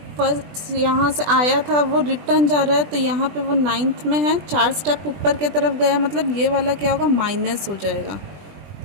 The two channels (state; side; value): late; left; 20 ms